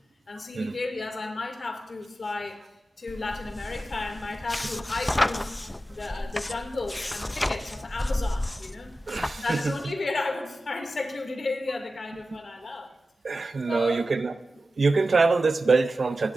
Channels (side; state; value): both; normal; correlation 0.93